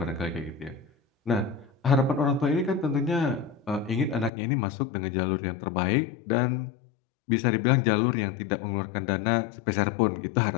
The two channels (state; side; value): drops out; right; at 4.3 s